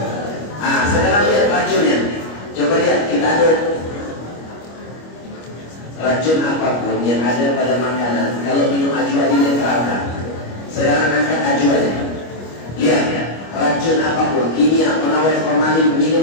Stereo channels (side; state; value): right; late; 25 ms